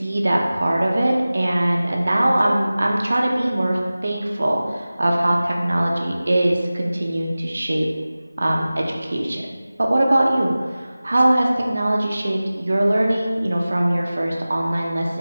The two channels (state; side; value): inverted; both; correlation -0.97